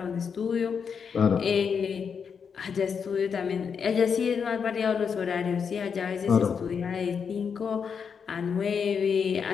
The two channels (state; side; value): quieter; right; 6.5 dB